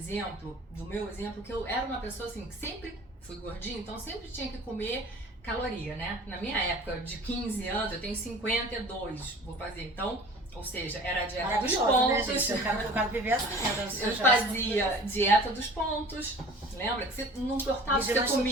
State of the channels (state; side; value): normal; both; correlation 0.44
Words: do meu exemplo, que eu era uma pessoa assim, que sempre fui gordinha, então sempre tinha que comer caloria, né? Na minha época de 15 anos, eu tenho 52, vou fazer, então, ou seja, era a dieta dos pontos. Né, gente? Eu quero viver assim. Eu fazia dieta dos pontos, lembra? Que você não importava o que você